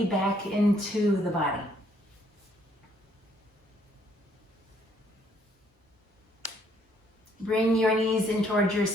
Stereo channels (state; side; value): normal; both; correlation 0.67